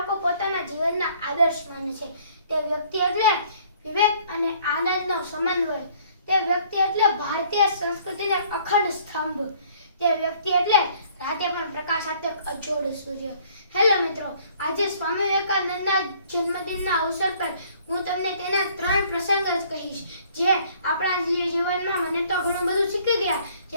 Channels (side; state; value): both; inverted; correlation -0.59